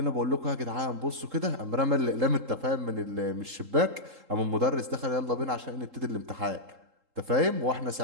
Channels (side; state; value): left; late; 3.7 ms